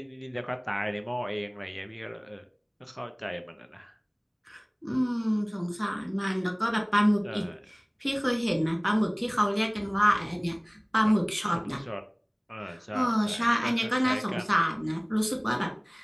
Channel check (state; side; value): identical; both; correlation 1.00